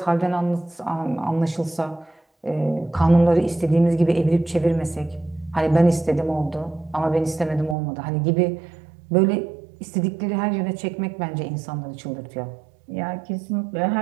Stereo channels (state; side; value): drops out; left; at 7.8 s